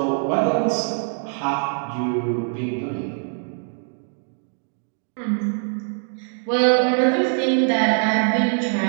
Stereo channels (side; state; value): left; silent; 56 dB below the other